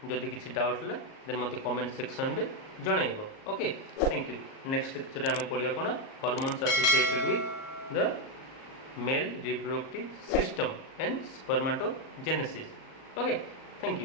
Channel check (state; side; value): late; right; 38 ms